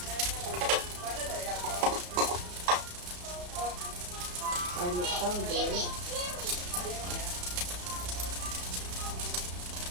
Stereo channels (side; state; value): left; late; 34 ms